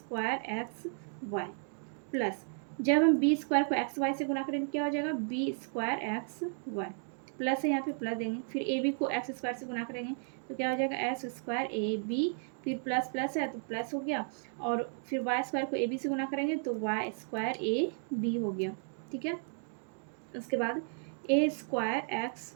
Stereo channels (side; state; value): left; silent; 55 dB below the other